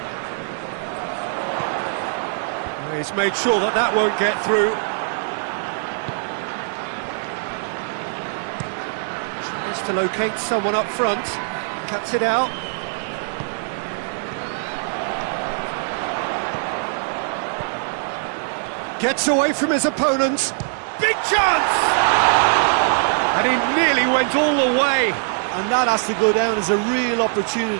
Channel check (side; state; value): left; silent; digital silence